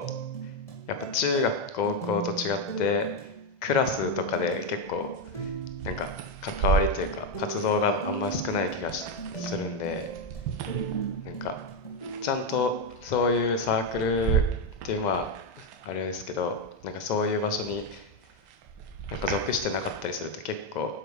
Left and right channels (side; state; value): right; late; 2.0 ms